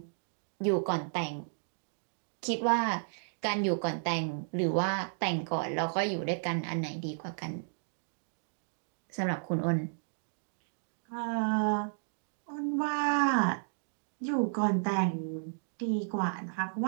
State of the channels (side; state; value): left; silent; digital silence